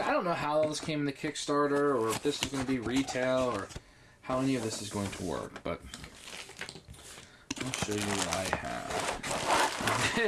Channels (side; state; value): both; identical; correlation 1.00